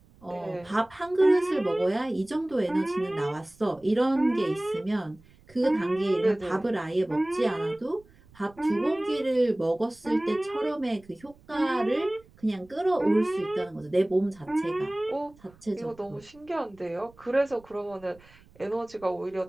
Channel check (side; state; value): right; noise; rumble, 27 dB below the sound